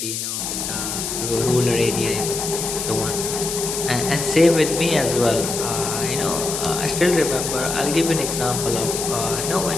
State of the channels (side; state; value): left; noise; hiss, 4 dB below the sound